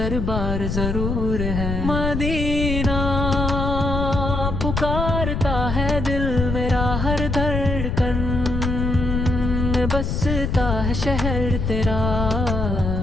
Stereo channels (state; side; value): noise; left; rumble, 2 dB below the sound